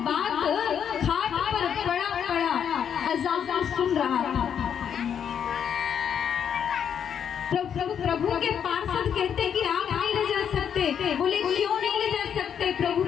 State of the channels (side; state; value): right; quieter; 8.2 dB